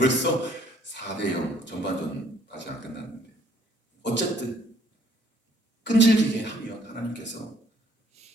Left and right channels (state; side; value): normal; both; correlation 0.63